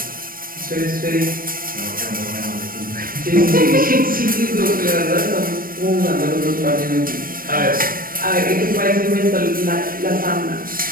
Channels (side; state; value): left; late; 0.41 ms